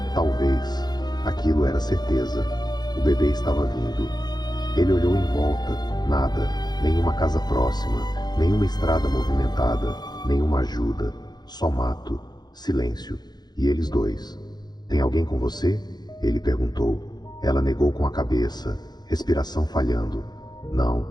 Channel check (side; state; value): right; late; 0.20 ms